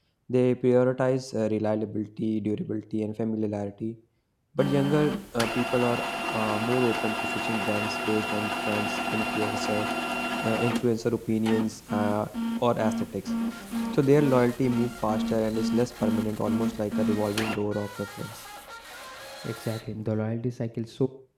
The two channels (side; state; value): both; identical; correlation 1.00